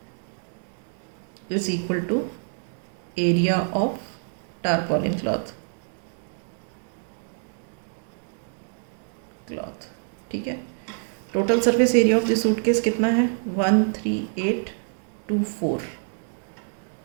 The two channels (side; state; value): left; silent; 61 dB below the other